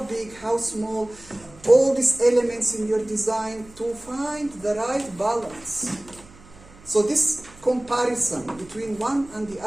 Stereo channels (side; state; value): right; noise; hum, 23 dB below the sound